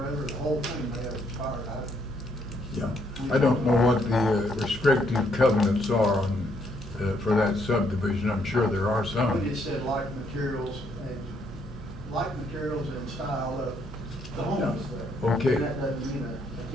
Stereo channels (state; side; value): normal; both; correlation 0.71